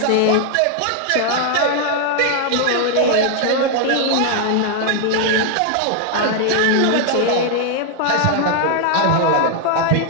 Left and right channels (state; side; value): different; both; correlation 0.00